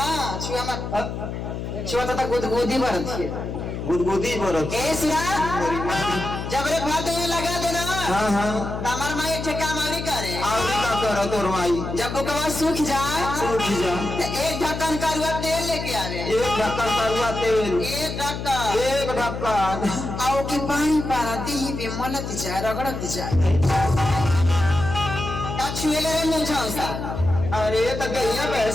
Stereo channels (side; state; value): left; noise; hum, 6 dB below the sound